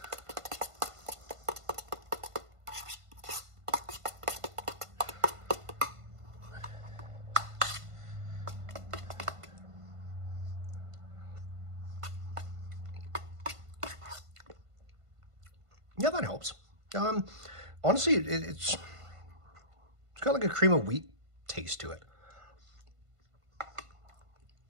Yeah, that helps. Honestly, it's got like a cream of wheat taste to it.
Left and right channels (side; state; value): left; late; 1.5 ms